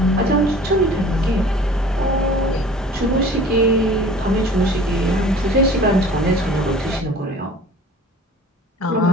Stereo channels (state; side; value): normal; both; correlation 0.46